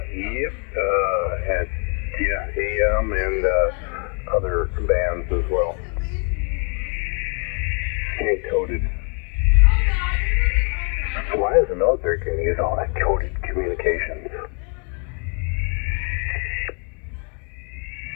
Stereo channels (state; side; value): quieter; right; 38.3 dB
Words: yep, had AM and other bands as well. And coded. Why is the military going to use all that coded communications?